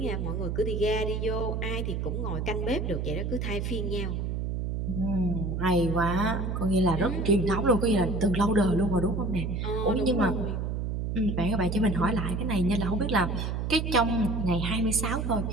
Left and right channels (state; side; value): noise; right; hum, 2 dB below the sound